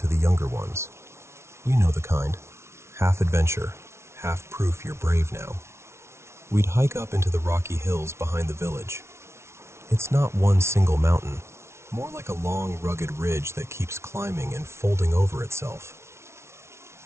the younger ones. You know the kind. Half adventure, half proof you're brave now. We'd hike up into the rocky hills behind the village. It's not one single mountain, more like a long, rugged ridge that keeps climbing and folding over itself.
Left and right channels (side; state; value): left; late; 0.13 ms